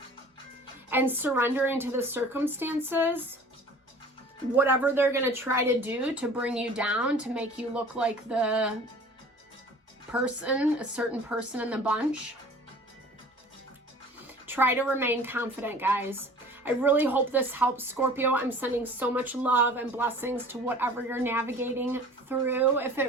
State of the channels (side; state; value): both; normal; correlation 0.45